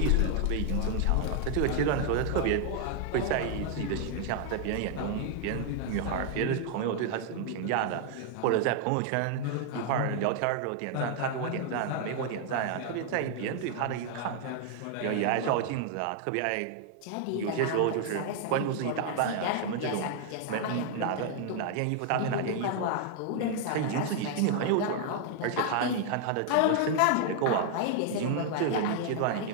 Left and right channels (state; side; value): different; both; correlation 0.00